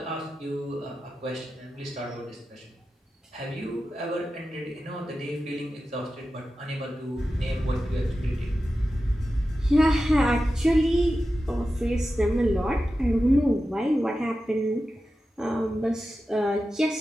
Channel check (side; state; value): both; normal; correlation 0.92